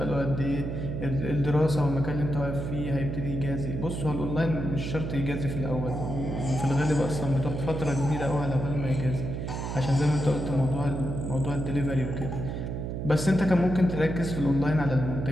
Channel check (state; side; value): noise; right; hum, 4 dB below the sound